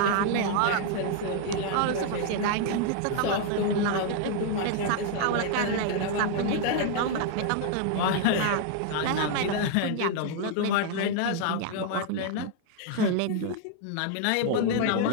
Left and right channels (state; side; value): different; both; correlation 0.00